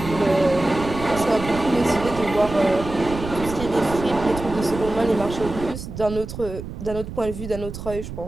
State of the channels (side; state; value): right; noise; rumble, 9 dB below the sound